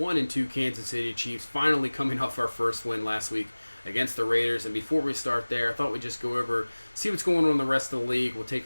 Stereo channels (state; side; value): inverted; both; correlation -1.00